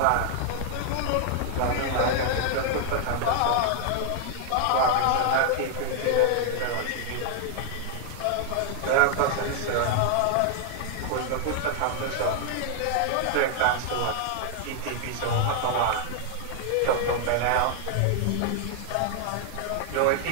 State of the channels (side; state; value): both; different; correlation 0.00